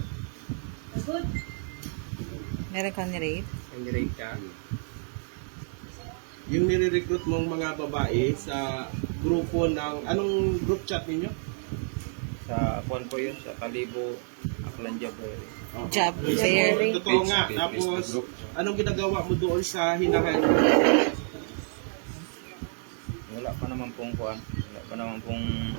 Good. Meron kang ni-rape? May nirape ka? Yung nire-recruit mong mga babae sa grupo ng anong group chat ninyo? Sa kuwan po yun, sa Kalibo, Aklan Jabber. Job fair. Totoo nga. Tapos, anong ginagawa mo doon sa hinahan? Wala pa naman pong kuwan. Wala pa naman pong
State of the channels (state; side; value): silent; left; 57 dB below the other